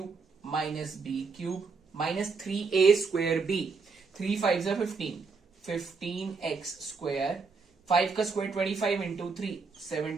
minus B cube minus 3a square B, 3 5 जा 15x स्क्वायर, 5 का स्क्वायर 25 इंटू 3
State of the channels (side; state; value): left; quieter; 4.7 dB